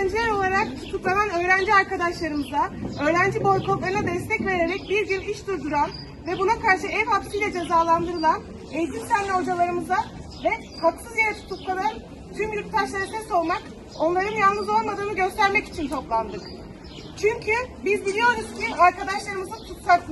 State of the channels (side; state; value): both; identical; correlation 1.00